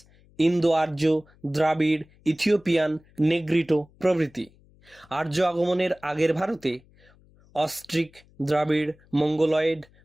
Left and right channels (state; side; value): noise; left; hum, 29 dB below the sound